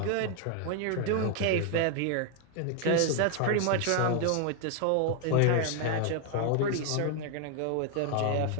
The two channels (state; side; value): different; both; correlation 0.00